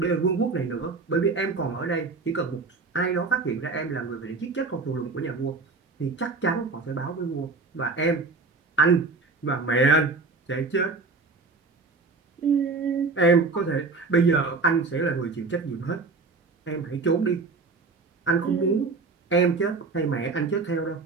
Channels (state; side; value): quieter; left; 4.1 dB